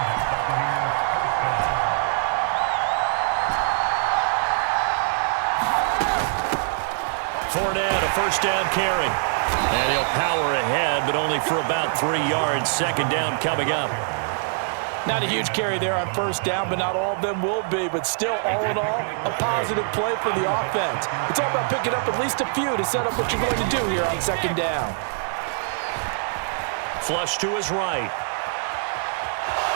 Fournette, a first down carry. And he'll power ahead, but only for about 3 yards. Second down coming up. Not a huge carry there on first down, but not all of them will be. But still, all in all, a positive play for the offense. It's all about picking up at least a few to set up what you're going to do here on second down. Flush to his right.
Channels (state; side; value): silent; left; 63 dB below the other